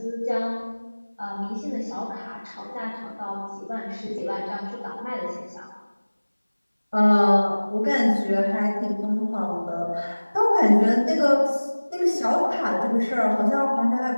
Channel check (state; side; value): inverted; both; correlation -1.00